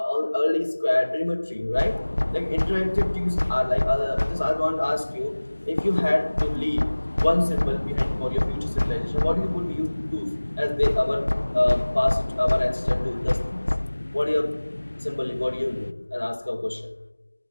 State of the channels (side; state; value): both; inverted; correlation -1.00